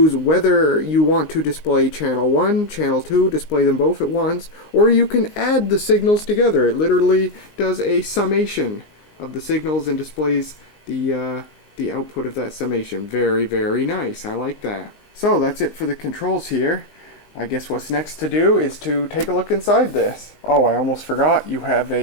whether you want to display channel 1, channel 2, display them both at once, or you can add the signals together. It literally does a summation of the signals and displays the output of that summation. Very, very nice. I like that. So that's it for the controls here. I guess what's next to do is to take a look inside this. Oh, I almost forgot. You have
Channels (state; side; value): late; right; 19 ms